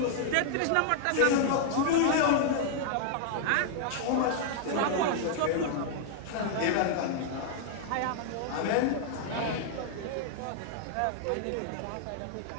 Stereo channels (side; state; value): both; different; correlation 0.00